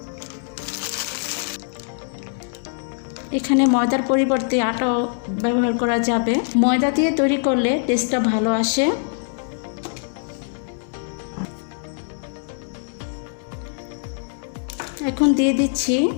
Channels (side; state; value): right; silent; digital silence